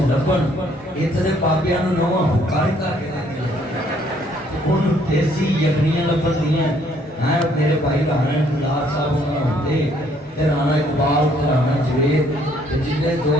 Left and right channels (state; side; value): normal; both; correlation 0.65